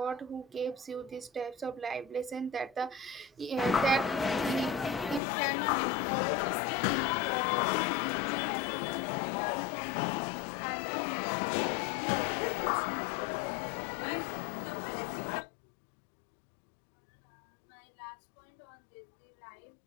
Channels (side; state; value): right; drops out; at 5.2 s